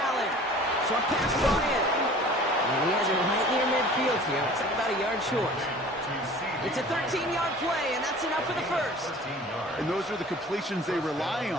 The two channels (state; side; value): normal; both; correlation 0.45